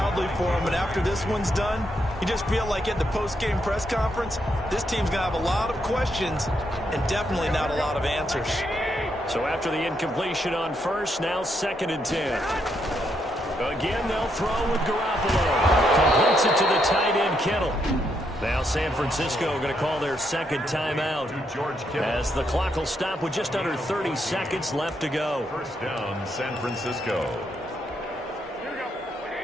for him. And after this one's done, you just feel like at the post-game press conference, this team's going to have a lot of questions and definitely not a lot of answers. So after the incompletion on first, now 2nd and 10. Again, they'll throw with Garoppolo. Completes it to the tight end, Kittle. Now San Francisco going to call their 2nd timeout as the clock will stop with just under 30 seconds left to go. 1st down, San Francisco.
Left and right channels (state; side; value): normal; both; correlation 0.78